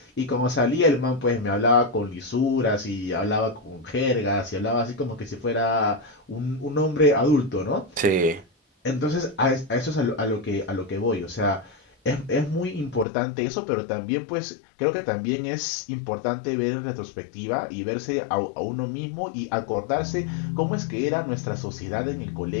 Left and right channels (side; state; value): right; drops out; at 13.1 s